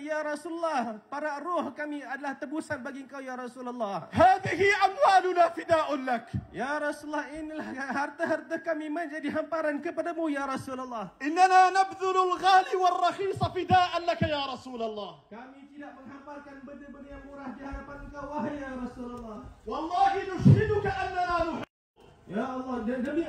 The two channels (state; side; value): identical; both; correlation 1.00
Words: ya Rasulullah, para ruh kami adalah tebusan bagi engkau ya Rasulullah. هذه أموالنا فداء لك. Ya Rasulullah, inilah harta-harta kami menjadi hamparan kepadamu ya Rasulullah. إننا نبذل الغالي والرخيص فداء لك يا رسول الله. Kami tidak menghamparkan benda-benda yang murah di hadapan engkau wahai ya Rasulullah. والله نشهدك أننا نحب. Ya Allah, demi